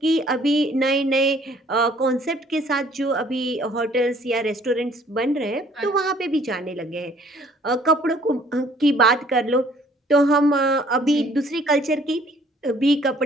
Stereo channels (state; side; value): normal; both; correlation 0.59